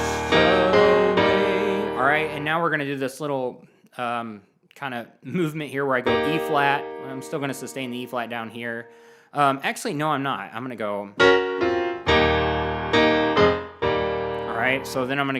away? All right, and now we're going to do this little kind of movement here where I go E flat. I'm still going to sustain the E flat down here. Actually, no, I'm not. I'm going to go. All right, so then I'm going to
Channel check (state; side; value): identical; both; correlation 1.00